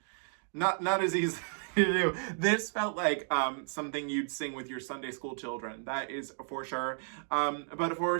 not as easy to do. This felt like something you'd sing with your Sunday school children. That is for sure. But for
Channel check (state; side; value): silent; left; digital silence